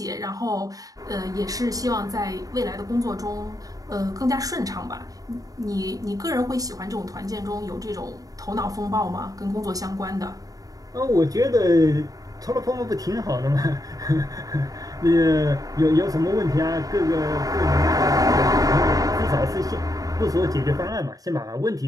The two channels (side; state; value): left; late; 0.17 ms